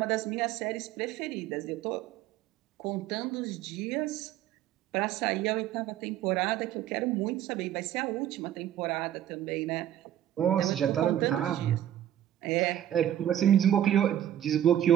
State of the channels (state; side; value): quieter; left; 11.5 dB